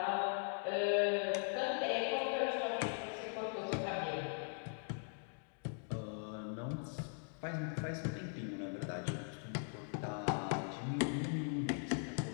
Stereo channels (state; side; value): silent; right; 51 dB below the other